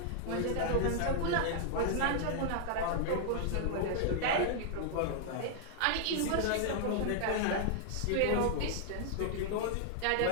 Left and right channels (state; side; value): different; both; correlation -0.01